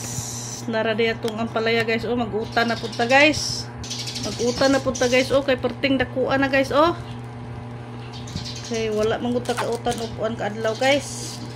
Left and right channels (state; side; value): identical; both; correlation 1.00